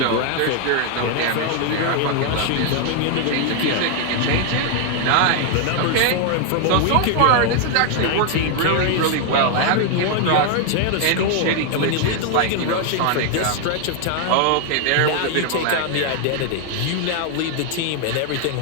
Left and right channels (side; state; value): both; different; correlation 0.00